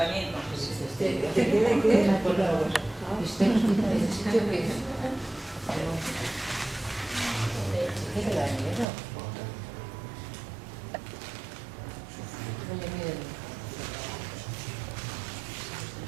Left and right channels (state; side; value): drops out; left; at 8.8 s